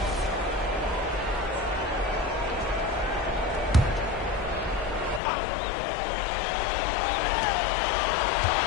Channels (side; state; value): right; drops out; at 5.2 s